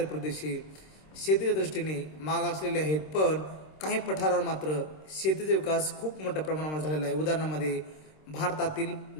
प्रदेश हे शेतीच्या दृष्टीने मागासलेले आहेत. पण काही पठारावर मात्र शेतीचा विकास खूप मोठ्या प्रमाणावर झालेला आहे. उदाहरणामध्ये भारतातील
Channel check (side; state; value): right; late; 26 ms